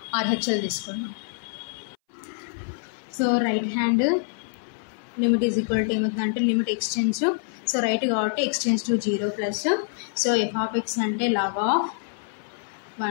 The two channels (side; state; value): right; silent; 61 dB below the other